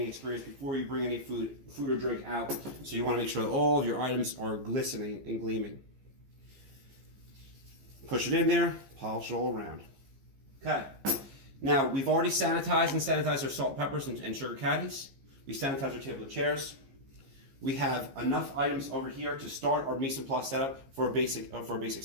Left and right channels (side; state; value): left; late; 15 ms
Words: experience before you bring any food or drink out. So you want to make sure that all of your items are glistening and gleaming. Push it in there, polish it all around. Okay. Now, we've already sanitized our salt, peppers, and sugar caddies. We sanitized our table and chairs. We have enough items over here to start our mise en place setup for a basic